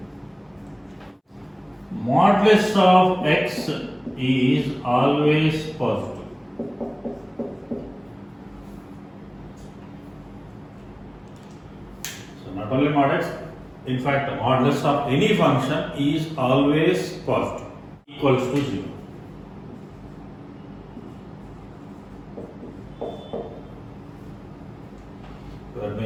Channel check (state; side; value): identical; both; correlation 1.00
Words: Modulus of x is always positive. So not only mod x, in fact modulus of any function is always positive, equals to 0. So that